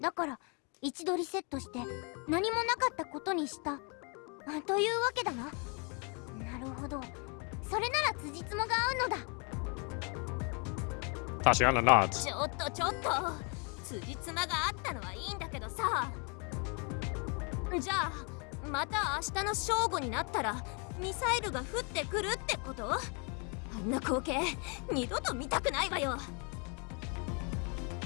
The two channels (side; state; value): right; quieter; 34.8 dB